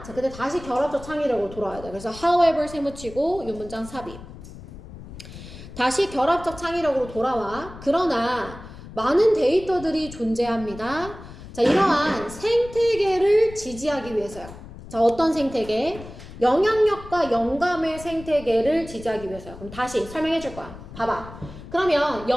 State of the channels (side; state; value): left; noise; rumble, 15 dB below the sound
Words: 자, 근데 다시 결합적 창의력으로 돌아와야 돼. 그래서 however 세무치고 이 문장 삽입. 다시 결합적 창의력으로 돌아와. 그러나 많은 데이터들이 존재합니다. 자, 이러한 생태계를 지지하기 위해서요. 자, 어떤 생태계? 영향력과 영감의 생태계를 지지하기 위해서요. 그럼 다시 설명해 줄 거야. 봐봐. 그러면